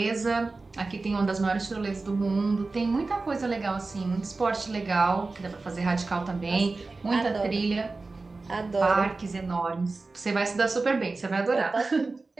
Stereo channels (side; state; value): left; quieter; 3.6 dB